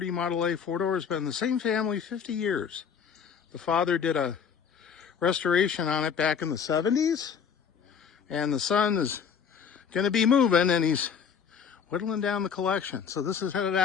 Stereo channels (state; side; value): quieter; right; 7.0 dB